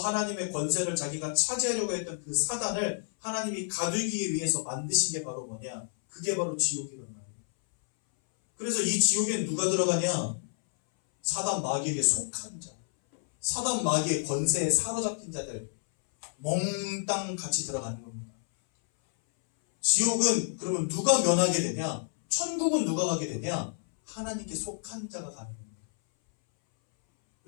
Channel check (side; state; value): right; silent; 58 dB below the other